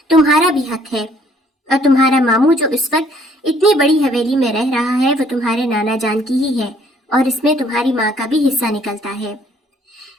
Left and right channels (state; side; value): normal; both; correlation 0.62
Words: تمہارا بھی حق ہے، اور تمہارا ماموں جو اس وقت اتنی بڑی حویلی میں رہ رہا ہے وہ تمہارے نانا جان کی ہی ہے، اور اس میں تمہاری ماں کا بھی حصہ نکلتا ہے۔